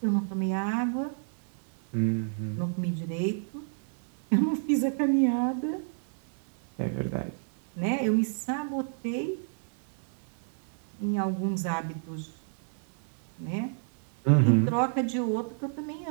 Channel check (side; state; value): left; silent; 58 dB below the other